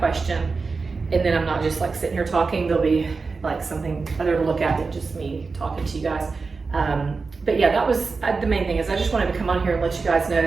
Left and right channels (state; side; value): quieter; left; 4.4 dB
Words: question, and then I'm not just like sitting here talking. There'll be like something other to look at than just me talking to you guys. But yeah, that was the main thing. Is I just wanted to come on here and let you guys know